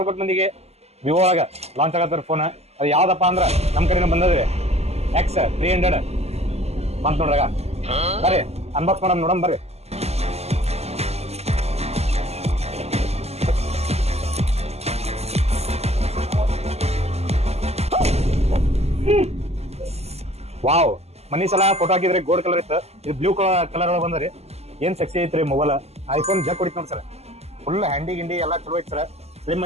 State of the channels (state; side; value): late; left; 0.30 ms